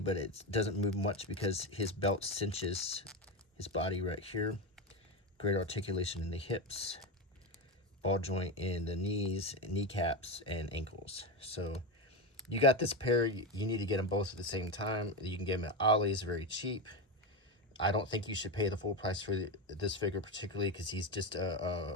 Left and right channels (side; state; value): both; normal; correlation 0.16